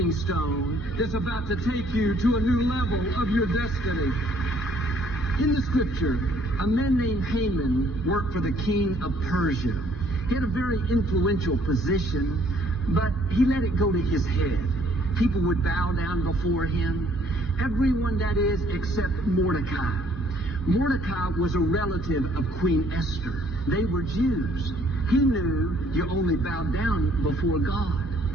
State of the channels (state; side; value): normal; both; correlation 0.62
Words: stone that's about to take you to a new level of your destiny. In the scripture, a man named Haman worked for the king of Persia. He had a very influential position, but he let it go to his head. People would bow down before him. Everyone, that is, except Mordecai. Mordecai was a relative of Queen Esther. They were Jews. He knew you only bowed down before God.